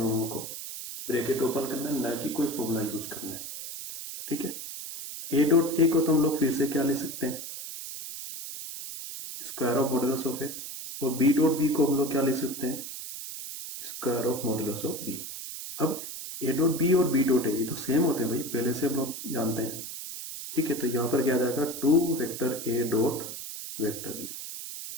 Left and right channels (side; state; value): right; noise; hiss, 9 dB below the sound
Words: को ब्रैकेट ओपन करना है, ना कि कोई फॉर्मूला यूज करना है। ठीक है, ए डॉट ए को तो हम लोग फिर से क्या ले सकते हैं? स्क्वायर ऑफ मॉडुलस ऑफ ए, और बी डॉट बी को हम लोग क्या ले सकते हैं? Square of modulus of B. अब ए डॉट बी और बी डॉट ए ये तो सेम होते हैं भाई, पहले से हम लोग जानते हैं। ठीक है, तो यहां पर क्या आ जाएगा? 2 vector A dot vector B.